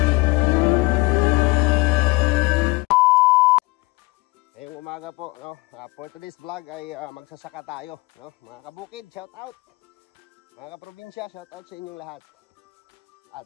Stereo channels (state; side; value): quieter; right; 23.4 dB